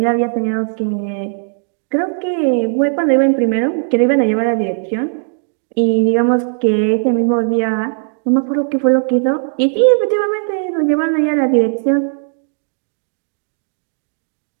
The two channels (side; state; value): left; silent; digital silence